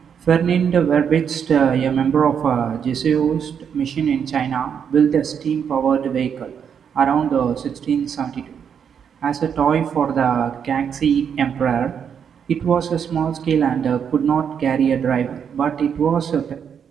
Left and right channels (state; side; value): quieter; left; 7.6 dB